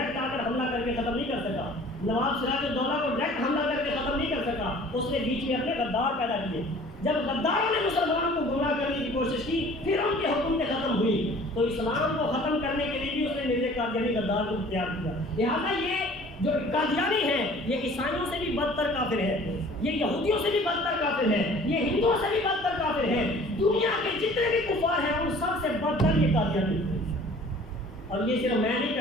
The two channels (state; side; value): normal; both; correlation 0.49